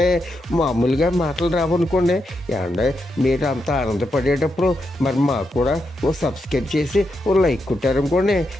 మామూలుగా మాటలు రావనుకోండి. ఏమంటే మీరు అంత ఆనందపడేటప్పుడు మరి మాకు కూడా ఓ సబ్స్క్రైబ్ చేసి ఓ లైక్ కొట్టారనుకోండి,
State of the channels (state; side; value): normal; both; correlation 0.84